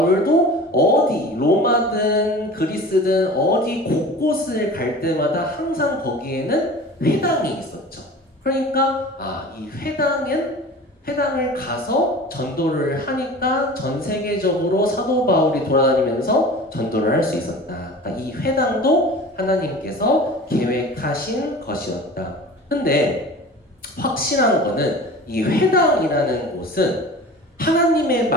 어디 로마든 그리스든 어디 곳곳을 갈 때마다 항상 거기에는 회당이 있었죠. 그러니까 이 회당을 가서 전도를 하니까 전 세계적으로 사도 바울이 돌아다니면서 전도를 할 수 있었다. 그러니까 이 회당도 하나님께서 계획하신 것이었다. 근데 확실한 거는 이 회당이라는 곳은 하나님의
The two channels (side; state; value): both; normal; correlation 0.38